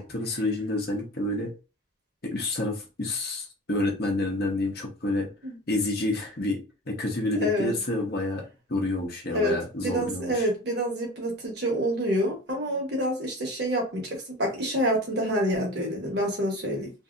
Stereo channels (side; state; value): both; normal; correlation 0.37